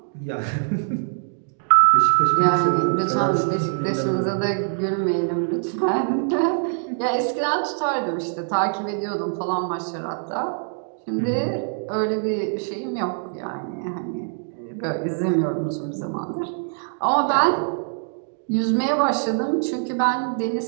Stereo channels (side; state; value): left; silent; digital silence